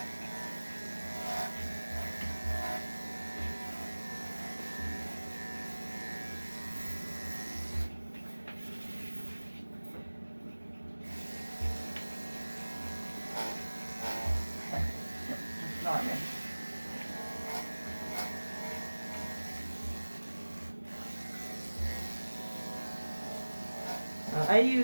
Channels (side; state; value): both; inverted; correlation -1.00